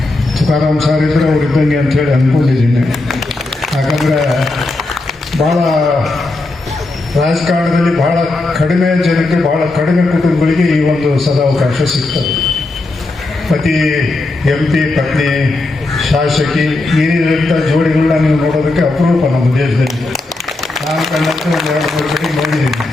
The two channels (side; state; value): right; quieter; 3.0 dB